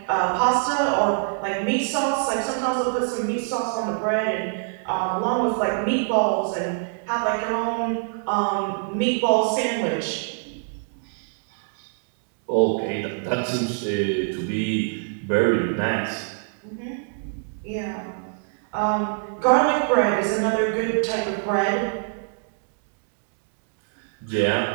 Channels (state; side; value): silent; left; digital silence